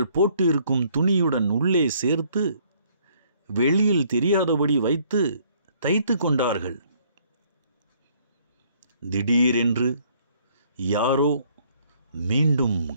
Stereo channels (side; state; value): both; inverted; correlation -0.63